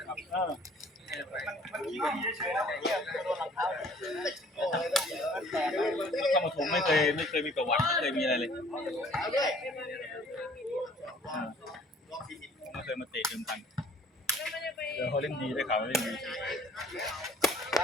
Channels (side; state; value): both; normal; correlation 0.55